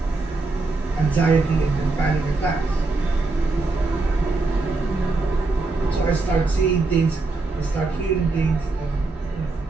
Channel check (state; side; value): quieter; left; 3.5 dB